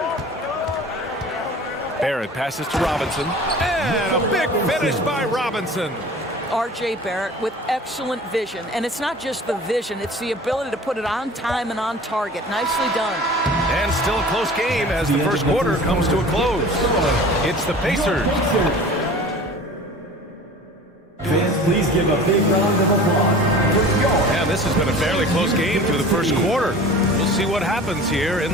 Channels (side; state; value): both; normal; correlation 0.42